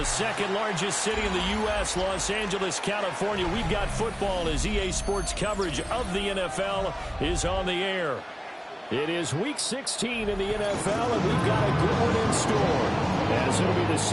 second largest city in the U.S., Los Angeles, California, we've got football as EA Sports coverage of the NFL is on the air. It is Week 16 in the NFL, and we've got a good one in store, as it'll be the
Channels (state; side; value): identical; both; correlation 1.00